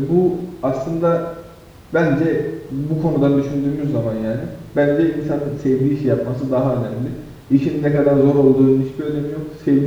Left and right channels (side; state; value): both; identical; correlation 1.00